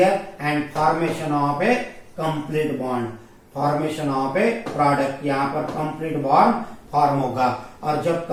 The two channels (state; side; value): identical; both; correlation 1.00